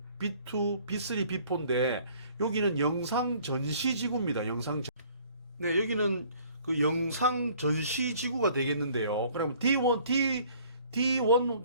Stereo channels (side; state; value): both; inverted; correlation -0.56